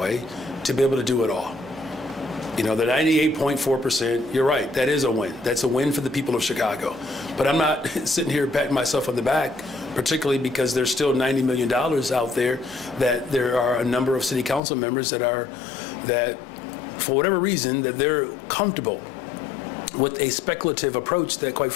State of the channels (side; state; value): right; drops out; at 14.6 s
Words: to be able to do it all. The 98.4%, you're right, that is a win. That's a win for the people of Chicago. But I'm not sitting here patting myself on the back, particularly because there's still $90 million out there that there are a number of city council members that for whatever reason, that they're comfortable with a speculative approach that, quite